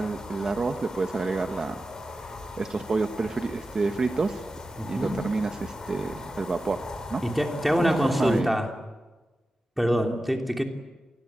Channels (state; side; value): normal; both; correlation 0.93